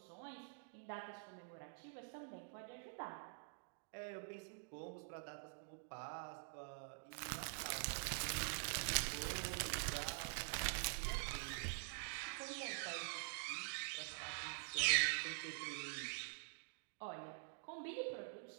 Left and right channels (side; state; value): left; silent; digital silence